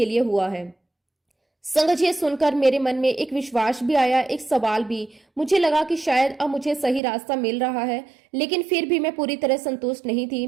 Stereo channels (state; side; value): drops out; left; at 7.0 s